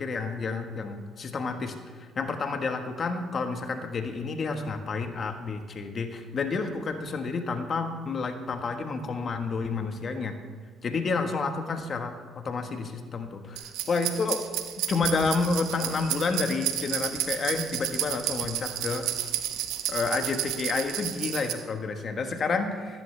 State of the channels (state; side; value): normal; both; correlation 0.66